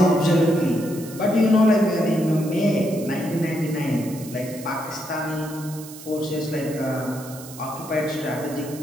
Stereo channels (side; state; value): right; noise; hiss, 16 dB below the sound